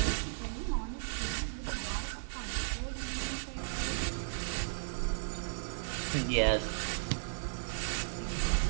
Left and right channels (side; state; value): left; silent; digital silence